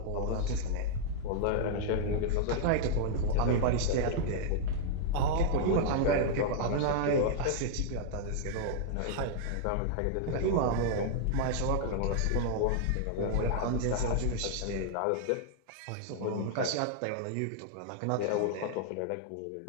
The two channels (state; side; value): different; both; correlation -0.01